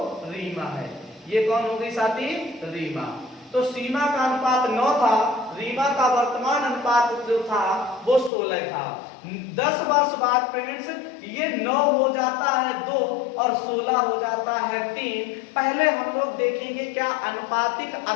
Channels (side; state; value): right; drops out; at 8.3 s